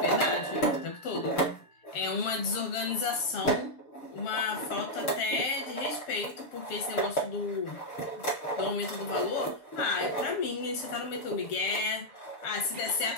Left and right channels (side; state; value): right; late; 6.9 ms